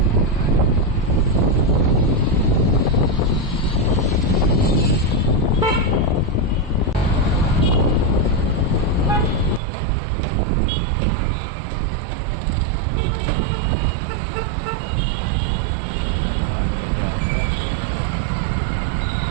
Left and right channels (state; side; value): drops out; left; at 9.6 s